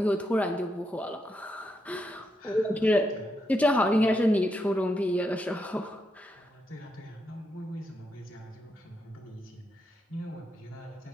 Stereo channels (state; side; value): normal; both; correlation 0.82